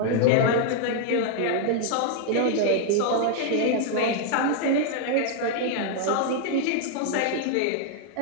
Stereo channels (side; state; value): both; different; correlation 0.00